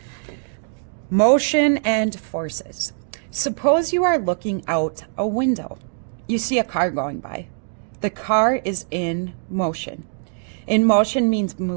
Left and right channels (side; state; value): left; silent; digital silence